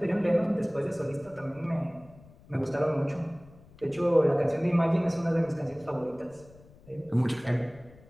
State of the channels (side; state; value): left; noise; rumble, 24 dB below the sound